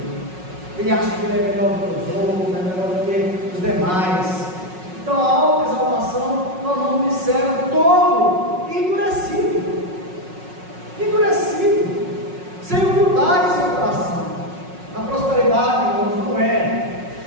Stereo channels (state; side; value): late; left; 5.4 ms